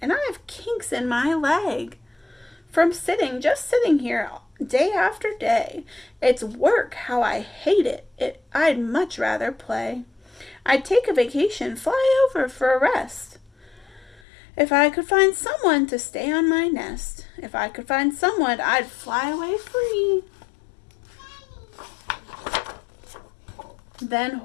and I have kinks in my leg. From just sitting here day after day. It's work, how I hate it. I'd much rather play. I'd take a vacation, fly over for a rest. If I could find someone to stay on my nest, if I could find someone, I'd fly away free. Then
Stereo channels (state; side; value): drops out; right; at 14.2 s